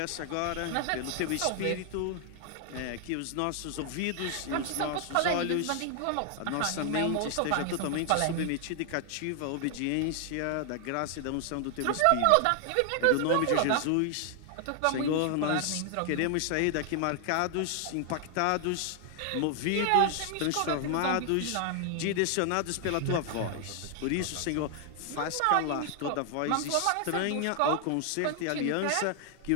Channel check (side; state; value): both; different; correlation 0.00